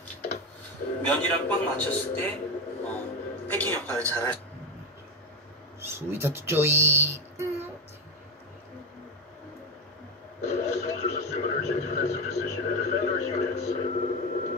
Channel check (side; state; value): both; normal; correlation 0.15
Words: 면이랑 꽉 맞췄을 때 패킹 역할을 잘 할 수 있습니다. 스위트 쪼이.